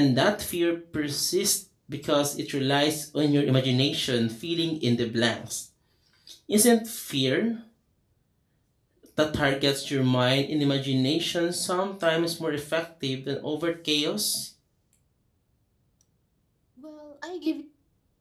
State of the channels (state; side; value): identical; both; correlation 1.00